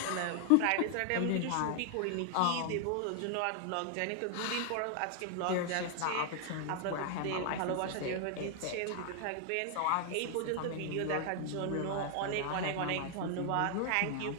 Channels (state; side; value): different; both; correlation 0.00